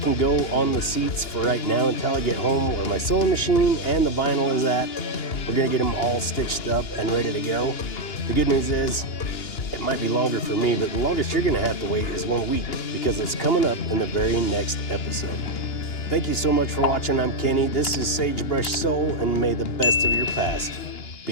go on the seats for right now until I get home where my sewing machine and the vinyl is at. We're gonna get them all stitched up and ready to go. The good news is, it might be longer for me, but the longest you're gonna have to wait is 1 week because it's coming up in the very next episode. Thank you so much for watching. I'm Kenny. This is Sagebrush Soul, and may the best of your past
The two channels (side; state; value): right; late; 2.9 ms